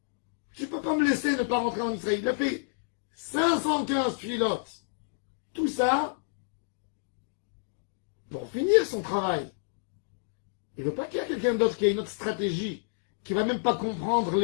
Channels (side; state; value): right; silent; digital silence